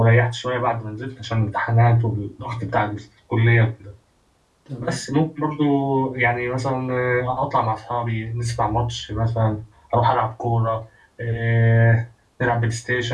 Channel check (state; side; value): identical; both; correlation 1.00